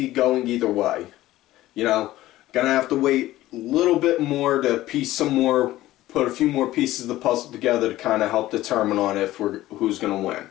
going either way. You know, gonna have to wait a little bit more to put a few more pieces of the puzzle together to kind of help determine on who's gonna win.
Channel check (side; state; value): right; quieter; 15.7 dB